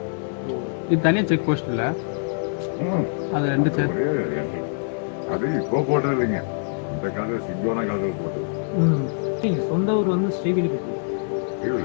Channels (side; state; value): right; silent; 59 dB below the other